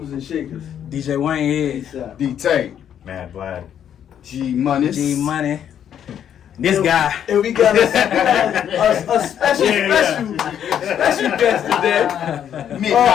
and shakers. DJ Waynehead, D-Tay, Mad Vlad. G Money. G Money. This guy. And we got a special guest today.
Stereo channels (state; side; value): quieter; right; 9.4 dB